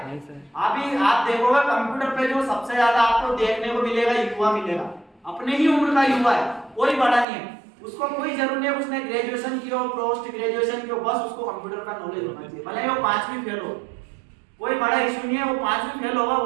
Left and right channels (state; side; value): drops out; left; at 7.2 s